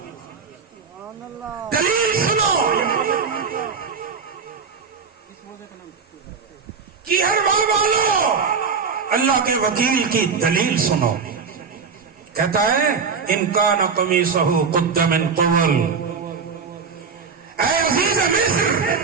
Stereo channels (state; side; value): quieter; left; 5.5 dB